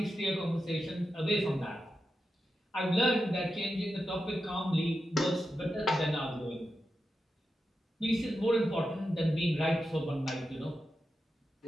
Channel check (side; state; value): both; normal; correlation 0.89